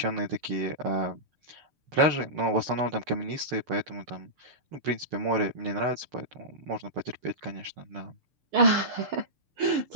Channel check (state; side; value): late; left; 6.8 ms